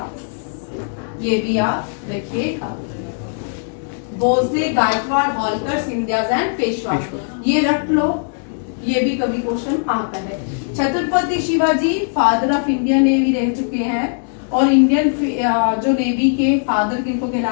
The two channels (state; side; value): silent; right; 62 dB below the other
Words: ये भी आप देखिएगा, भोसले, गायकवाड़, होलकर, सिंधियास एंड पेशवास। ये रख लो, ये भी कभी क्वेश्चन आता है। Chhatrapati Shivaji father of Indian navy रह चुके हैं, और इंडियन जो नेवी के फादर किनको